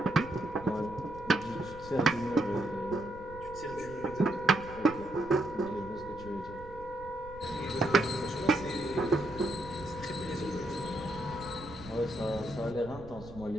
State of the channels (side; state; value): right; noise; rumble, 16 dB below the sound